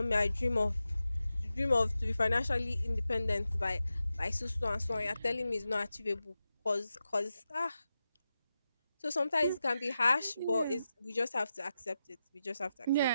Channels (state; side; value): inverted; both; correlation -0.90